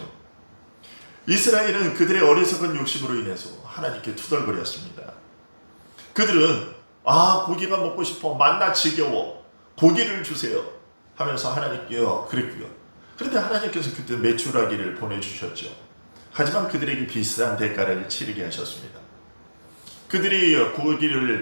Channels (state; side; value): inverted; both; correlation -1.00